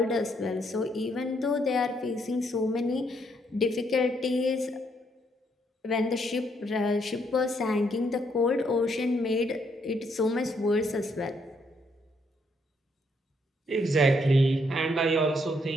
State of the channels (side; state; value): both; normal; correlation 0.73